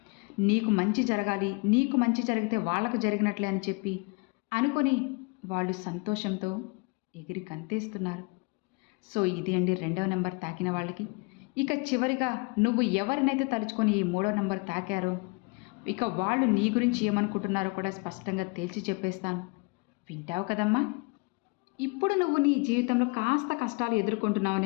నీకు మంచి జరగాలి, నీకు మంచి జరిగితే వాళ్ళకు జరిగినట్లే అని చెప్పి అనుకొని వాళ్ళు సంతోషంతో ఎగిరి గంతేస్తున్నారు. సో ఇది అండి 2వ నంబర్ తాకిన వాళ్ళకి. ఇక చివరిగా నువ్వు ఎవరినైతే తలుచుకొని ఈ 3వ నంబర్ తాకారో ఇక వాళ్ళు నీ గురించి ఏమనుకుంటున్నారో కూడా స్పష్టంగా తేల్చి చెప్పేస్తాను. వింటావు కదమ్మా? ఇప్పుడు నువ్వు నీ జీవితంలో కాస్త కష్టాలు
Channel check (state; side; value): quieter; right; 30.2 dB